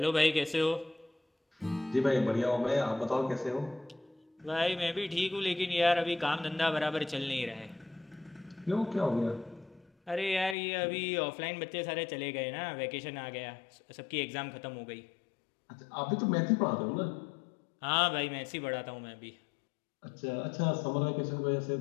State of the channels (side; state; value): right; drops out; at 10.6 s